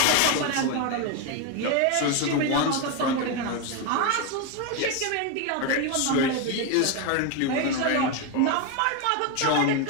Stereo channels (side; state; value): both; different; correlation 0.02